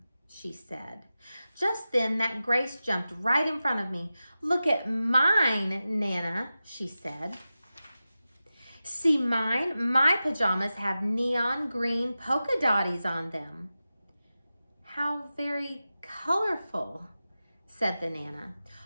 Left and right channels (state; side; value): inverted; both; correlation -0.94